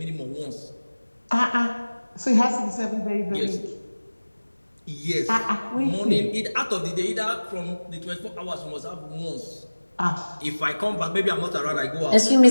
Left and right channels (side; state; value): both; inverted; correlation -1.00